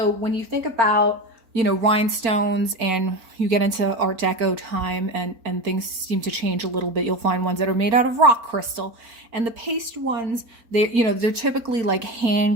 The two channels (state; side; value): late; left; 4.4 ms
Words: when you think about, rhinestones, and you get into Art Deco time, and things seem to change a little bit, you'll find ones that are made out of rock crystal. And the paste ones, they're typically like